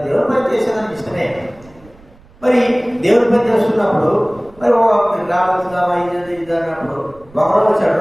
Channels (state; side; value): noise; right; rumble, 25 dB below the sound